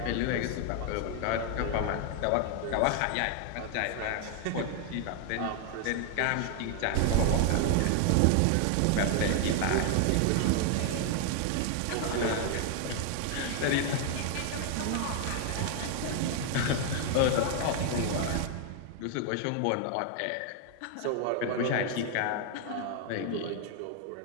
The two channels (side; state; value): both; different; correlation 0.00